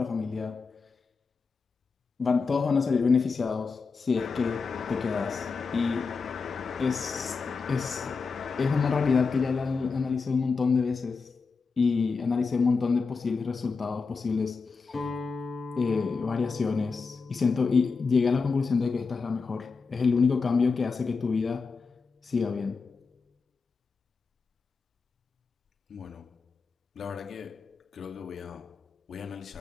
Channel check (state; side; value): quieter; right; 4.8 dB